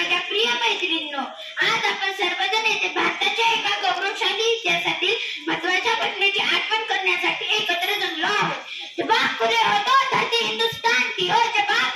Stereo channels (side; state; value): both; identical; correlation 1.00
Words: प्रिय मैत्रिणींनो, आज आपण सर्वजण येथे भारताच्या एका गौरवशाली इतिहासातील महत्त्वाच्या घटनेची आठवण करण्यासाठी एकत्र जमलो आहोत। जब आँख खुले हो तो धरती हिंदुस्तान की हो, जब आँख